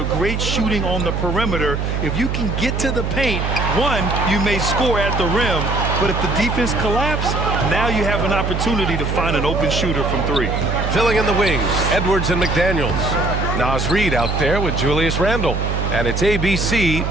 great shooting on the perimeter, if you can get to the paint, one, you may score at the rim, but if the defense collapses, now you have an opportunity to find an open shooter from 3. Filling in the wings, Edwards and McDaniels. Naz Reid out there with Julius Randle. And it's ABC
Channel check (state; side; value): noise; right; hum, 1 dB below the sound